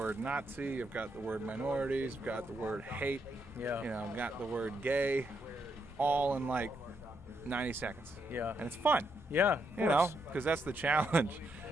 Nazi, I've got the word minorities, I've got the word hate, Yeah. you know, I've got the word gay, all in like 90 seconds. Yeah. And it's fun, Yeah. you know, because that's the challenge.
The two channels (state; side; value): normal; both; correlation 0.78